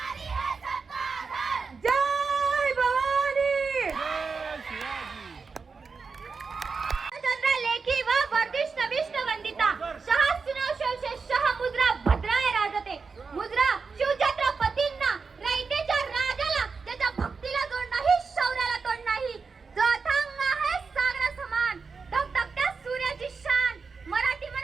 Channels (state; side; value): quieter; left; 4.9 dB